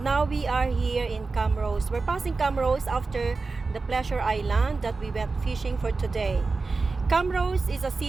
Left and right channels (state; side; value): quieter; left; 4.0 dB